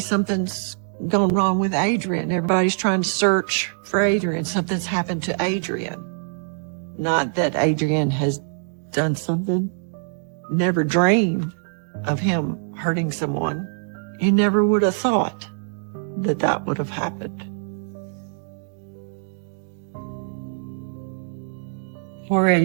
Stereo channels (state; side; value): silent; left; digital silence